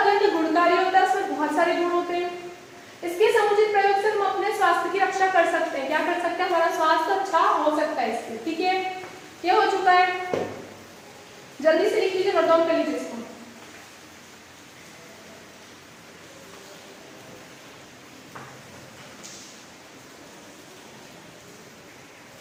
गुणकारी होता है, उसमें बहुत सारे गुण होते हैं। इसके समुचित प्रयोग से हम अपने स्वास्थ्य की रक्षा कर सकते हैं। क्या कर सकते हैं? हमारा स्वास्थ्य अच्छा हो सकता है इससे। ठीक है, ये हो चुका है। जल्दी से लिख लीजिए, नोट डाउन कर लीजिए इसको।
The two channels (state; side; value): identical; both; correlation 1.00